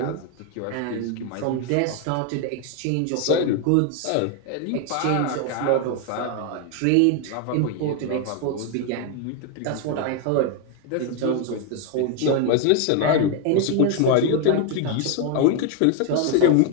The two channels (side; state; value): both; different; correlation 0.01